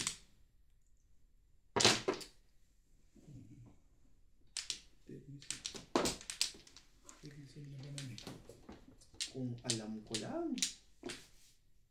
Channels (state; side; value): identical; both; correlation 1.00